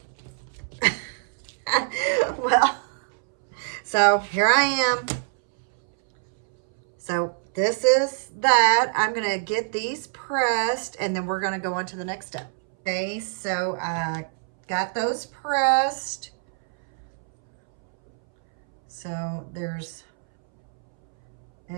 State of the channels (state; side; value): silent; left; 62 dB below the other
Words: well, so here I am. So this is that. I'm going to get these pressed, and then we're going to go on to the next step. Okay, so I got those pressed. So there's